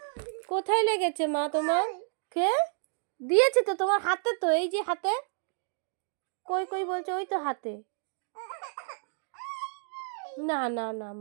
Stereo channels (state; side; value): silent; left; 57 dB below the other